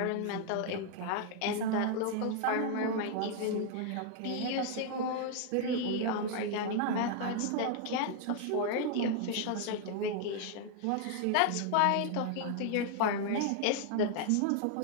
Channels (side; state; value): both; different; correlation 0.00